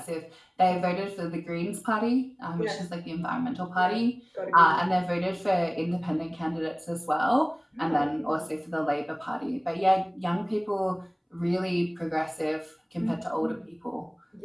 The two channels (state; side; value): identical; both; correlation 1.00